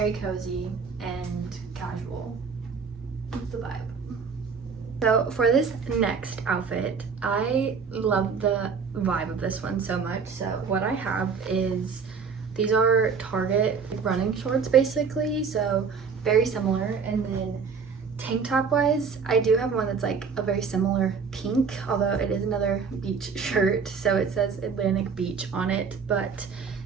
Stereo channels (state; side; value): quieter; left; 5.7 dB